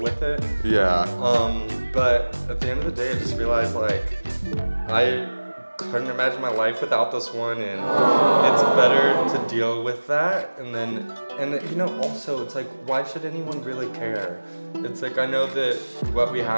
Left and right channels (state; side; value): inverted; both; correlation -1.00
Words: it. Yeah. But at the end of the day, I just realized like I couldn't imagine my life without this one, and it's better to deal with that. And you know, also it's like, why should anyone really care? It's like, I know that what we